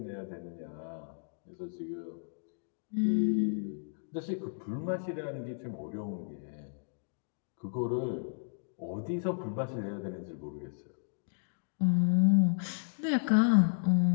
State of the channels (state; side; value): silent; right; digital silence